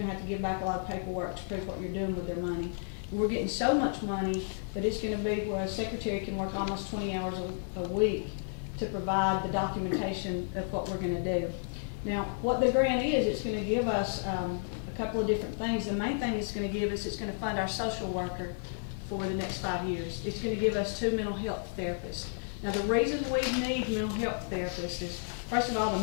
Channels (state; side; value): silent; right; digital silence